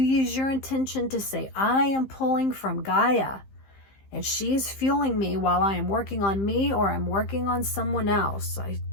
your intention to say, I am pulling from Gaia and she is fueling me while I am working on me or I'm working on someone else. I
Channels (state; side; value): late; right; 15 ms